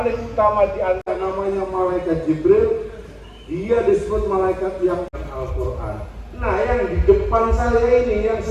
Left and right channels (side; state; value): both; identical; correlation 1.00